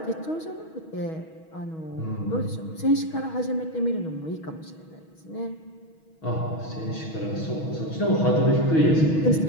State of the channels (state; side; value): late; right; 6.3 ms